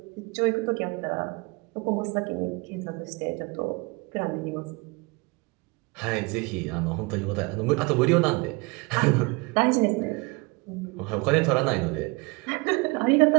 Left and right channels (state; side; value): quieter; left; 27.4 dB